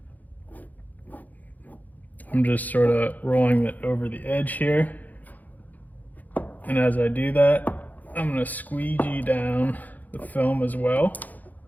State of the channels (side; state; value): right; late; 0.081 ms